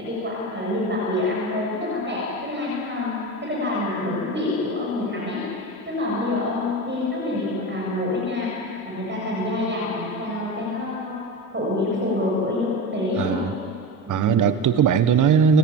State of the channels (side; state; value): both; normal; correlation 0.25